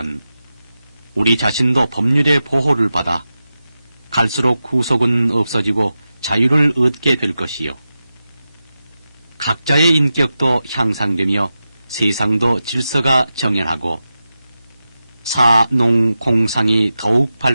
우리 자신도 법률의 보호를 받아 갈수록 구속은 없어지고 자유를 얻게 될 것이요. 각자의 인격도 향상되며 세상도 질서가 정연하고 사, 농, 공상이 더욱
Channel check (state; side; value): inverted; both; correlation -0.92